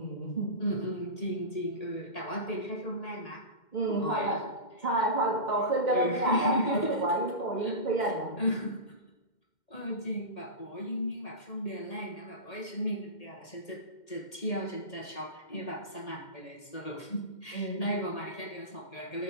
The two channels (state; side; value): late; right; 2.1 ms